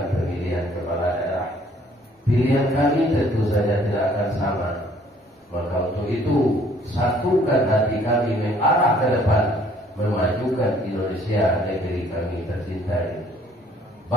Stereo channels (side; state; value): both; normal; correlation 0.60